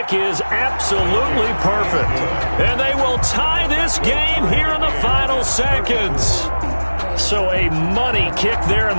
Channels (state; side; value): inverted; both; correlation -1.00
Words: is absolutely perfect. And they will tie this game here in the final seconds. So a money kick there in